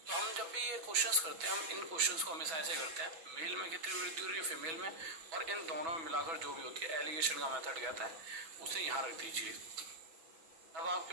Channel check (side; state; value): left; late; 6.1 ms